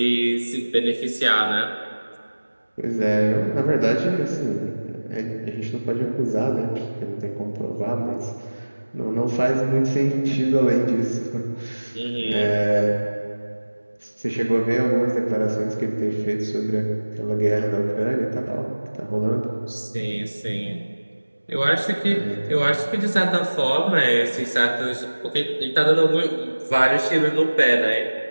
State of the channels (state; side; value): inverted; both; correlation -1.00